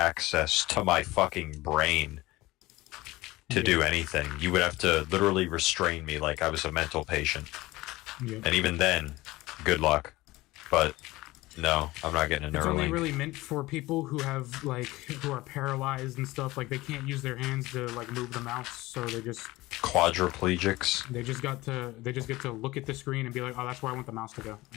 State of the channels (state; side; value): quieter; right; 19.4 dB